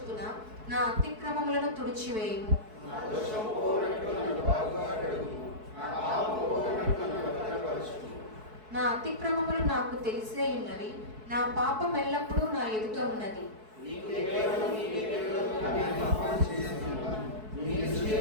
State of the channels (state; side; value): late; left; 4.6 ms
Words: నా అతిక్రమములను తుడిచివేయుము. నా అతిక్రమములు నాకు తెలిసే ఉన్నవి, నా పాపం ఎల్లప్పుడూ నా ఎదుట ఉన్నది.